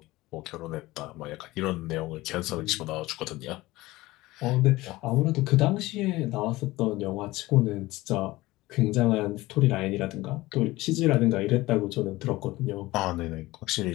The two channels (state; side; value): quieter; right; 19.0 dB